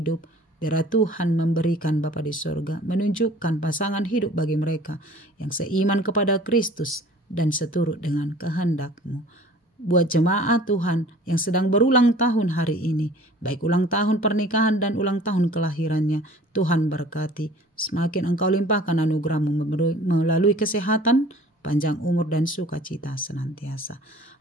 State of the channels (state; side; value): normal; both; correlation 0.48